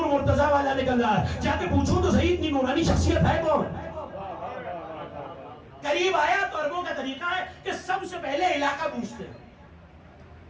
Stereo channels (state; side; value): identical; both; correlation 1.00